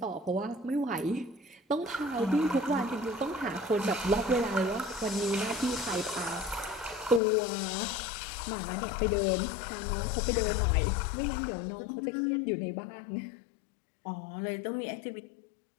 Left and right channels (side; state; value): right; drops out; at 7.2 s